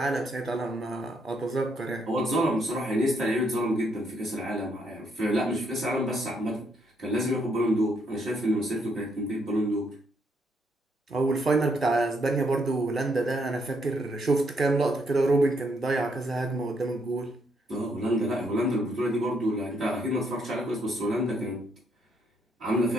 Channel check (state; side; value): normal; both; correlation 0.73